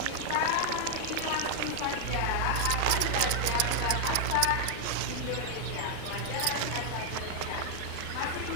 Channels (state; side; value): different; both; correlation 0.00